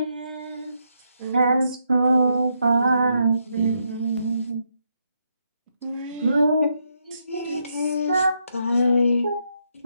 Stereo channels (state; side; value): inverted; both; correlation -0.79